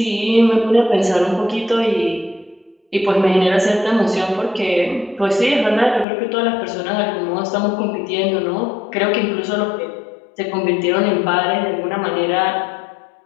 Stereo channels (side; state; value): right; drops out; at 6.1 s